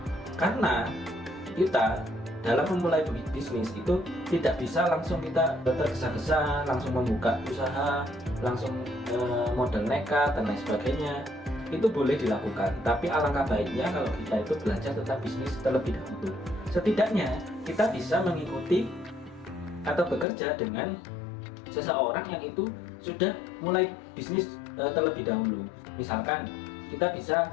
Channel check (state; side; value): drops out; right; at 20.2 s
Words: Karena kita dalam memulai bisnis itu tidak bisa langsung kita tergesa-gesa langsung membuka usaha, langsung modal nekat dan lain sebagainya. Itu boleh dilakukan, tapi alangkah baiknya kalau kita itu belajar tentang bisnis terlebih dahulu. Setidaknya kita bisa mengikuti atau bekerja dengan seseorang yang itu sudah mulai bisnis terlebih dahulu. Misalkan kita bisa